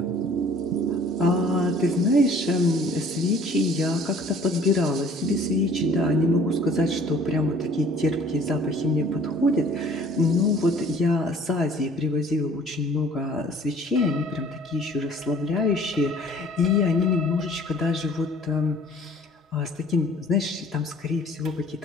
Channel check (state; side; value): normal; both; correlation 0.53